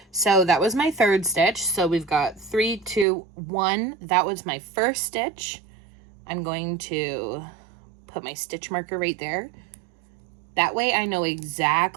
So that was my third stitch. So we've got 3, 2, 1. That was my first stitch. I'm going to put my stitch marker right there. That way I know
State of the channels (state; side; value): drops out; left; at 3.1 s